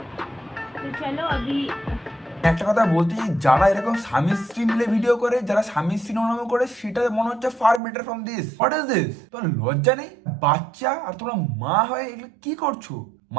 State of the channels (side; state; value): left; drops out; at 7.8 s